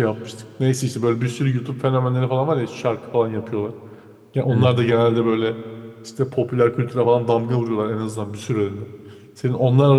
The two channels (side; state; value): both; identical; correlation 1.00